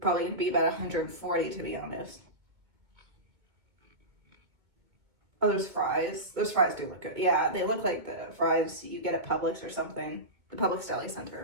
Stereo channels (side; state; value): left; late; 2.2 ms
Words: going to be about 140, to be honest. Oh, there's fries. Those fries do look good. Yeah, they look like the fries you get at Publix or something. The Publix Deli